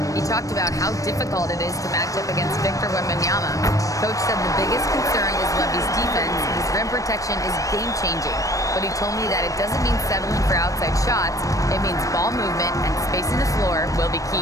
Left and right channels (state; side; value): late; right; 0.16 ms